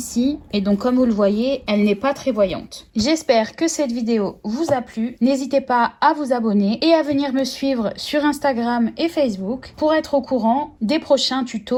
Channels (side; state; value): both; identical; correlation 1.00